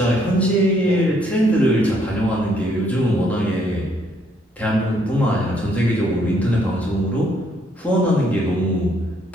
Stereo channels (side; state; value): both; normal; correlation 0.69